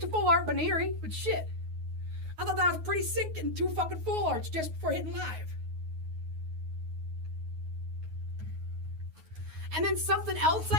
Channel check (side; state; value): left; late; 9.4 ms